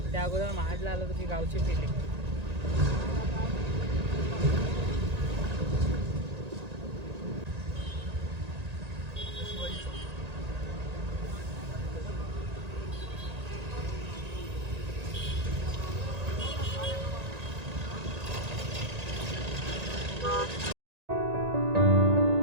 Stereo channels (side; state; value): left; late; 1.9 ms